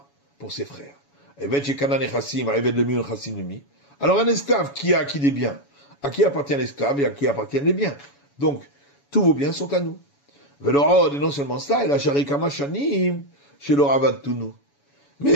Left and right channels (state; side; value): late; right; 7.1 ms